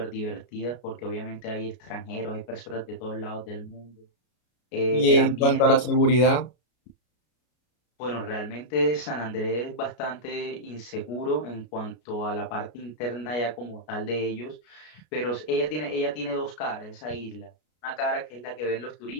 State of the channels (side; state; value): right; late; 33 ms